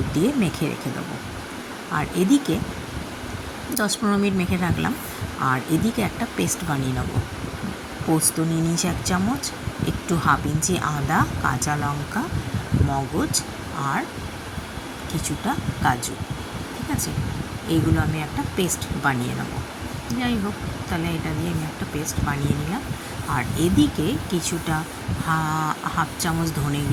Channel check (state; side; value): identical; both; correlation 1.00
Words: দিয়ে মেখে রেখে দেবো। আর এদিকে 10-15 মিনিট মেখে রাখলাম। আর এদিকে একটা পেস্ট বানিয়ে নেবো। পোস্ত নিয়ে নিয়েছি 1 চামচ, একটু 1/2 ইঞ্চি আদা, কাঁচা লঙ্কা, মগজ আর কিছুটা কাজু। ঠিক আছে, এইগুলো আমি একটা পেস্ট বানিয়ে নেব। যাই হোক, তাহলে এটা দিয়ে আমি একটা পেস্ট বানিয়ে নিলাম। আর এদিকে কিছুটা 1/2 চামচ ধনে